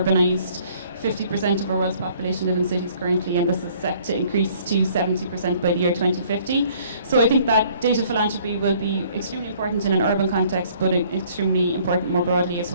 50% of our world's population live in cities currently, and this is set to increase to 70% by the year 2050. So I think that data philanthropy will be extremely important in an urban context, but extremely important more broadly as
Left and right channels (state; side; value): inverted; both; correlation -0.58